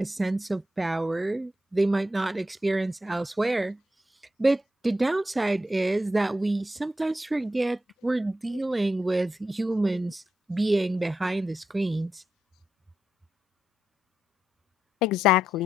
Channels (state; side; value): normal; both; correlation 0.85